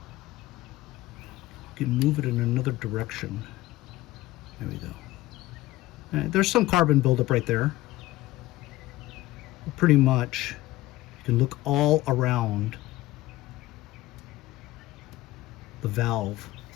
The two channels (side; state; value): right; quieter; 17.2 dB